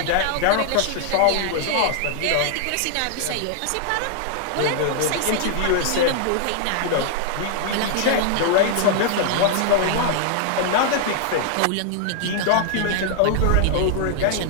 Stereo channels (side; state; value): both; different; correlation 0.00